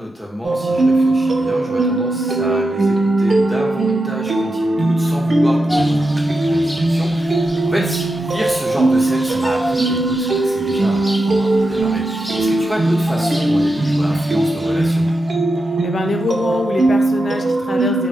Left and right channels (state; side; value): normal; both; correlation 0.88